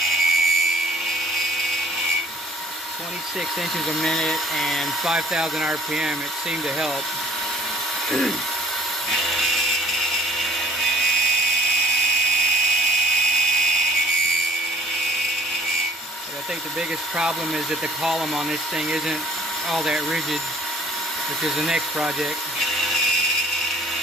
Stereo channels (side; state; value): both; normal; correlation 0.56